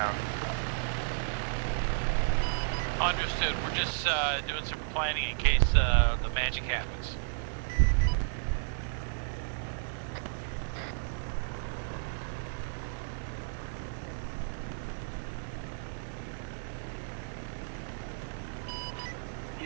Understood. We're just doing some planning in case the magic happens.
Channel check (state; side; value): silent; left; digital silence